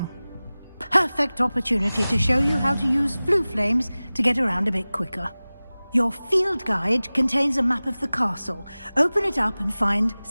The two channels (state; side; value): inverted; both; correlation -0.98